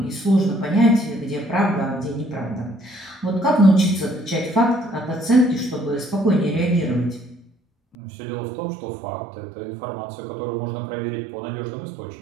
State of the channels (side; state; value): left; drops out; at 8.0 s